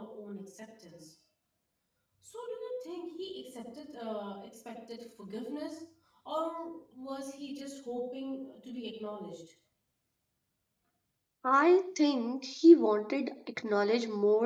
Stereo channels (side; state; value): both; identical; correlation 1.00